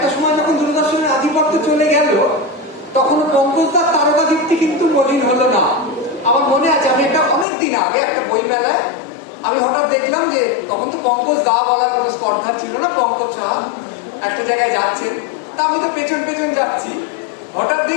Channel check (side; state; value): right; drops out; at 7.5 s